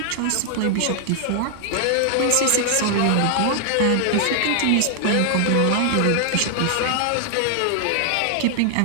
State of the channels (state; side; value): different; both; correlation 0.00